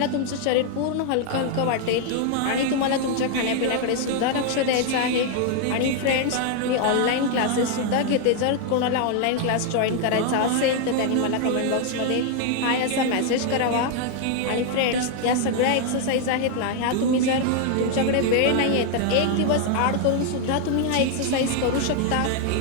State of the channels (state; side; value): different; both; correlation 0.00